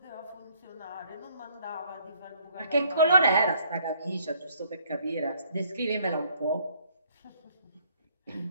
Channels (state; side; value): inverted; both; correlation -0.64